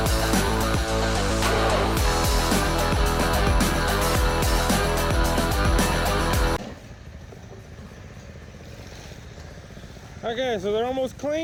Okay, so they're almost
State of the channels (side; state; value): both; identical; correlation 1.00